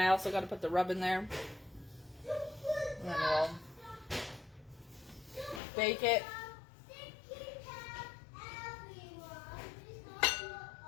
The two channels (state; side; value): drops out; right; at 5.6 s